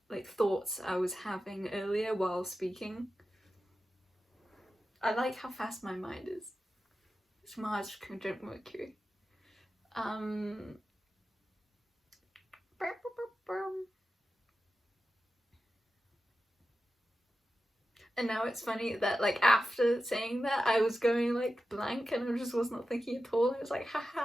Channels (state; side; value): normal; both; correlation 0.92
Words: like thoughts I was having earlier while speaking. I like how fast my mind is. It's Mars conjunct Mercury. And now it's funny that like after saying that I was going like blank and I just was not thinking at all. I was like,